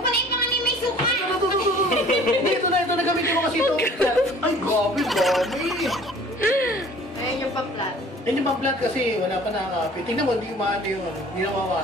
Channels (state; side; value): normal; both; correlation 0.50